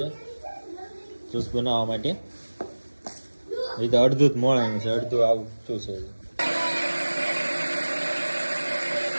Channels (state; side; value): inverted; both; correlation -1.00